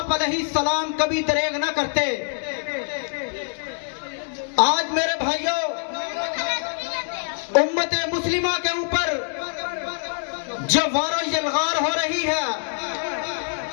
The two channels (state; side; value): silent; right; digital silence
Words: علیہ السلام کبھی دریغ نہ کرتے۔ آج میرے بھائیوں، امت مسلمہ کے اوپر جو وار و یلغار ہو رہی ہے،